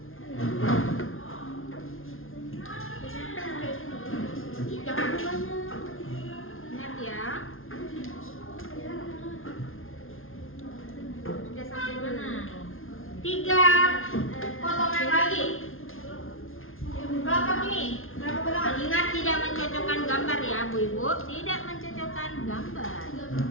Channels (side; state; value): right; late; 0.60 ms